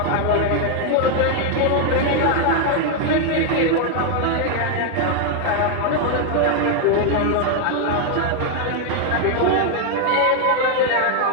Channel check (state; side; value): different; both; correlation 0.01